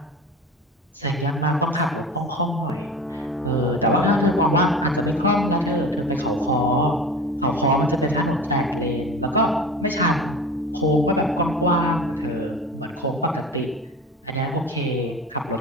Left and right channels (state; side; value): normal; both; correlation 0.34